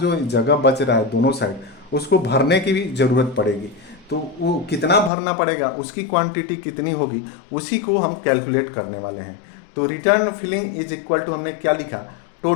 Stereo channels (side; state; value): right; drops out; at 5.1 s